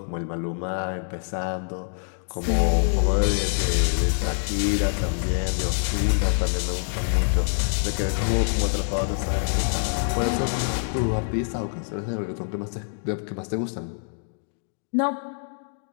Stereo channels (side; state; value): right; silent; digital silence